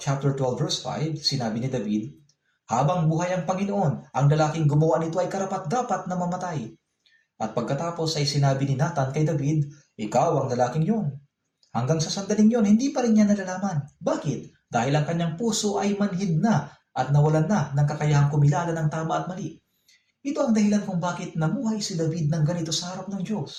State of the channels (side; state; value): both; identical; correlation 1.00